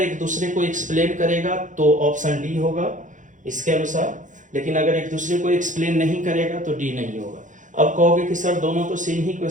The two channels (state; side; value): late; left; 0.37 ms